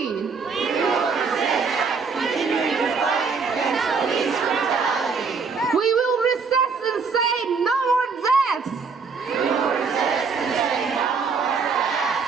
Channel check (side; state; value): left; quieter; 5.1 dB